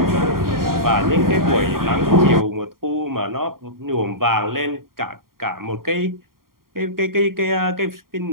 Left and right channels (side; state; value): left; late; 0.92 ms